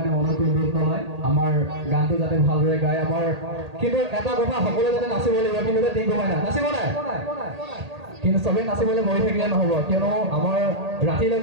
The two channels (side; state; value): left; late; 1.8 ms